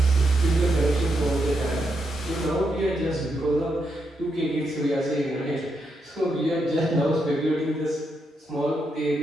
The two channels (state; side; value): normal; both; correlation 0.81